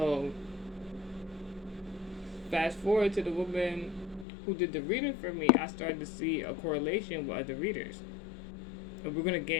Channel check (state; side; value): drops out; right; at 4.2 s